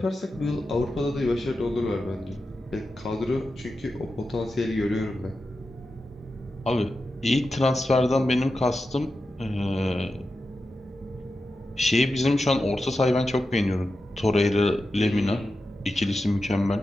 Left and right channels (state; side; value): normal; both; correlation 0.91